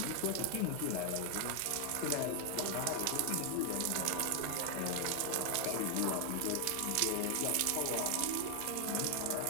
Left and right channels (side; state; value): both; different; correlation 0.00